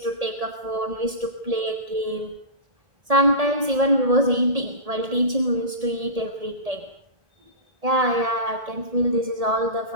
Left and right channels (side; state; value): left; late; 1.7 ms